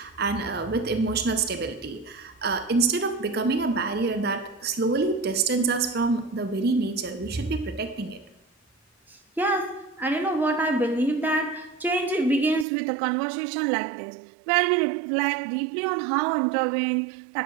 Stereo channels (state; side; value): drops out; left; at 12.7 s